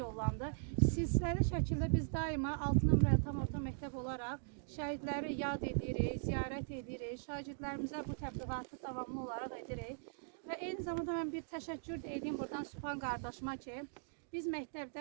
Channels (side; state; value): left; silent; digital silence